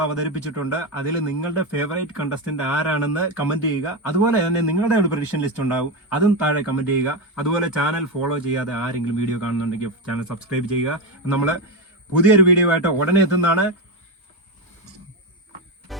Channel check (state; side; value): normal; both; correlation 0.12